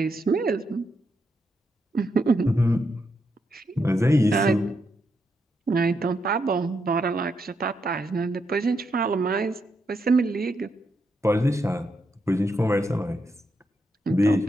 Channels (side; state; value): both; normal; correlation 0.81